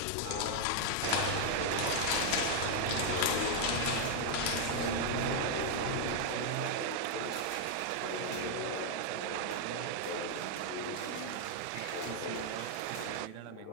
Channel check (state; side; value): different; both; correlation 0.00